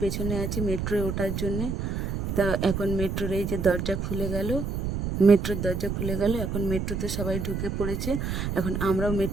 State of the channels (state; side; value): noise; right; rumble, 2 dB below the sound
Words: পেছনে আছি মেট্রোয় ওঠার জন্যে। তা এখন মেট্রোর এই যে দরজা খুলে গেল, মেট্রোর দরজা খুলে গেল, এখন মেট্রোতে সবাই ঢুকে পড়েছে। এখন আমরাও